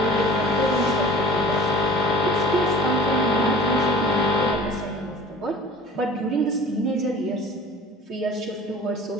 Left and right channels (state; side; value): normal; both; correlation 0.44